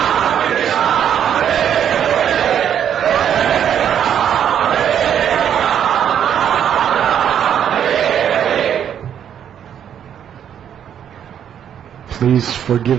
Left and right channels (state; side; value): quieter; left; 9.2 dB